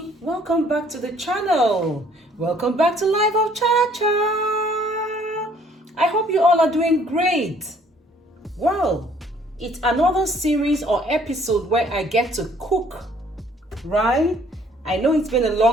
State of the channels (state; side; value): normal; both; correlation 0.60